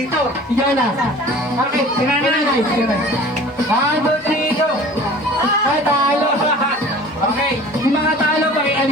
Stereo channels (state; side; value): normal; both; correlation 0.44